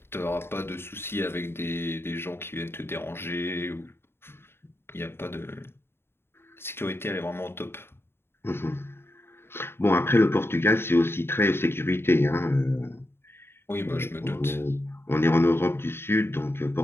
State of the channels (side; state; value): right; late; 0.11 ms